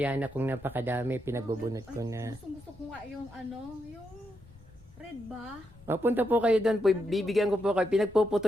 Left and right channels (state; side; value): noise; left; rumble, 23 dB below the sound